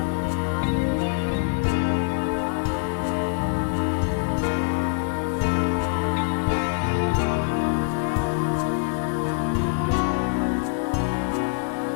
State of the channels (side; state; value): right; silent; 62 dB below the other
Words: rough and ready, finely spun, whether with a thousand